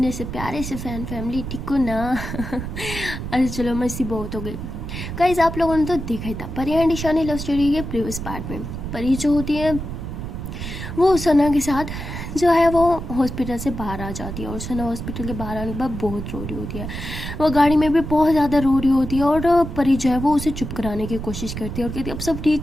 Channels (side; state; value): right; noise; rumble, 7 dB below the sound